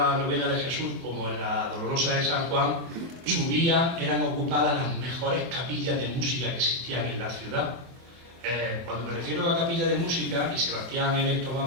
novena de Jesús como en la Dolorosa de San Juan, eran ocupadas las mejores capillas de música que existían en la ciudad. Cuando me refiero a capillas de música, y Sebastián en esto más o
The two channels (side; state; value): left; late; 24 ms